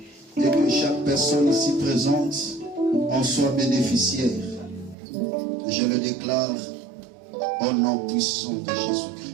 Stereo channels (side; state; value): left; drops out; at 5.0 s